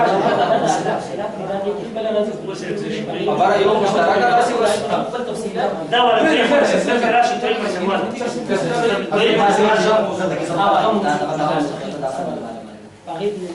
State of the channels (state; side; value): identical; both; correlation 1.00